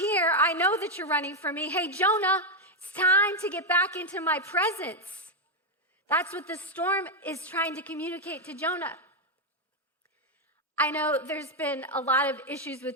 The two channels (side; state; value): both; normal; correlation 0.03